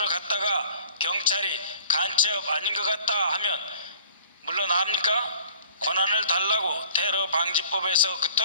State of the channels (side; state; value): both; inverted; correlation -0.50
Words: 갔다가 경찰이 간첩 아닌 것 같다 하면 물러납니까? 권한을 달라고 테러 방지법에서